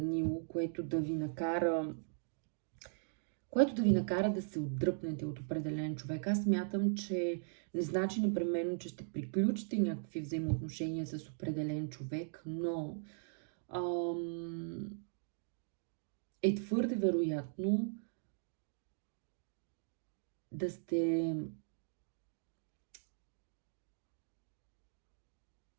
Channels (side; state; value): left; silent; digital silence